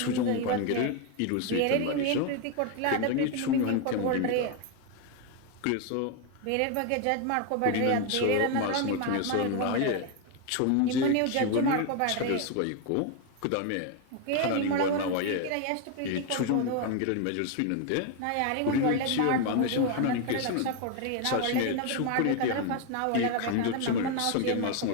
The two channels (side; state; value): both; different; correlation 0.01